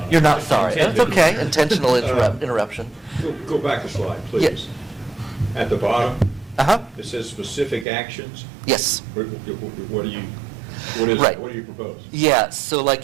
You're not sorry. It's okay. Intentional interruption. Go back a slide, please. At the bottom, it says specific actions. Yes. What do you... What is Right. it? What do you propose? Yeah, so like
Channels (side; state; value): left; drops out; at 7.9 s